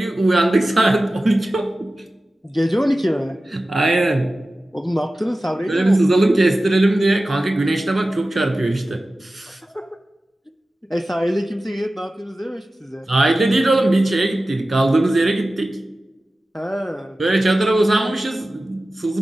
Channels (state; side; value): normal; both; correlation 0.95